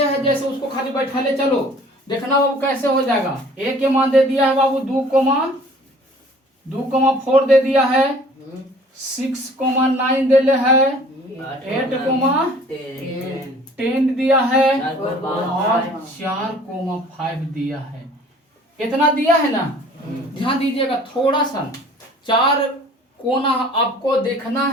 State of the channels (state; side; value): normal; both; correlation 0.51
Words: है जैसे उसको खाली बैठा ले चलो, देखना बाबू कैसे हो जाएगा। ए के मान दे दिया है बाबू 2,4 दे दिया है, 6,9 दे ले है, 8,10 दिया है और 4,5 दिया है। इतना दिया है ना? ध्यान दीजिएगा थोड़ा सा, 4 कोना आपको देखना